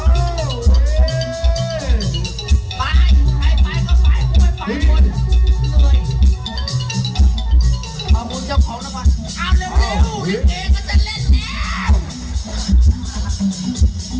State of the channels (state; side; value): identical; both; correlation 1.00